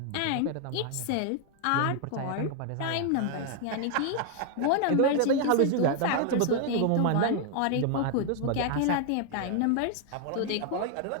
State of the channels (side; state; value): both; different; correlation 0.00